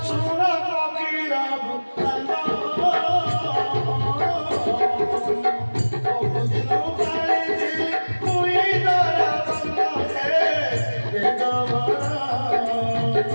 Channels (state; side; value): inverted; both; correlation -1.00